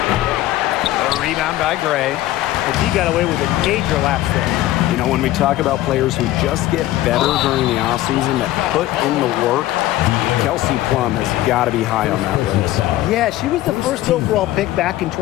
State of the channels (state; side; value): quieter; right; 15.3 dB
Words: The rebound by Gray. But he got away with a major lapse there. You know, when we talk about players who just get better during the offseason, that put in the work, Kelsey Plum has got to be high on that list. Yeah, she was the first overall pick back in